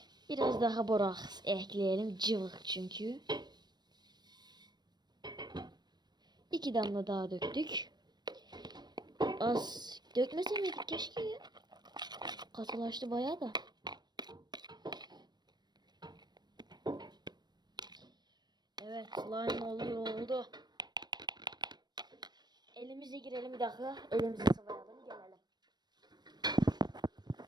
Biraz daha boraks ekleyelim. Cıvık çünkü. 2 damla daha döktük. Az dökmese miydik keşke ya. Katılaştı bayağı da. Evet, slime oldu. Elimize girelim bir dakika. Elimizi sıvayalım, gelelim.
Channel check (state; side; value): late; left; 0.20 ms